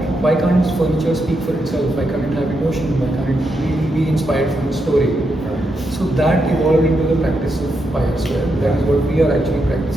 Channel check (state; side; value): normal; both; correlation 0.83